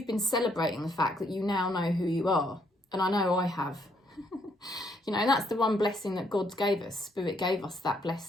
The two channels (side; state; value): both; normal; correlation 0.71